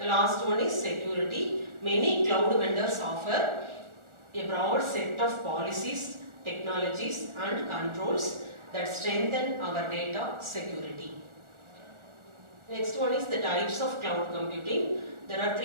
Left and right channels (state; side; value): late; left; 1.4 ms